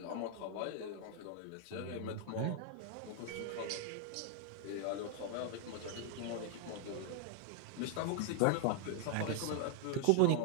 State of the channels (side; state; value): both; different; correlation 0.00